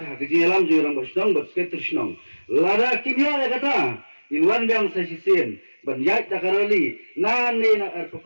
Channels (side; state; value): both; inverted; correlation -1.00